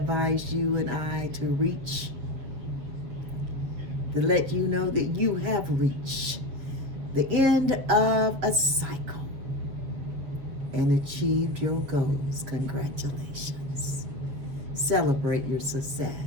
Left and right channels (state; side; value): late; left; 7.3 ms